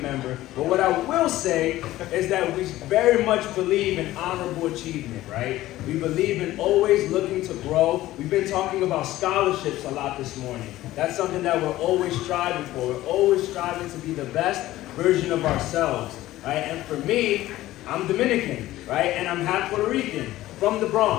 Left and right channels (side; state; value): right; quieter; 15.7 dB